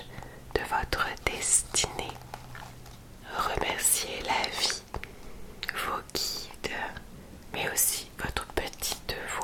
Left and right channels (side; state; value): both; identical; correlation 1.00